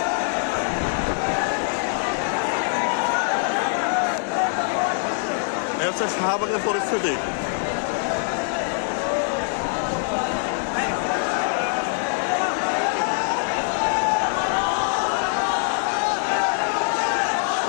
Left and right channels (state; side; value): silent; right; digital silence